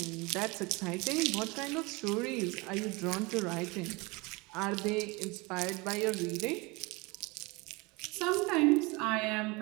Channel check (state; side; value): quieter; left; 25.6 dB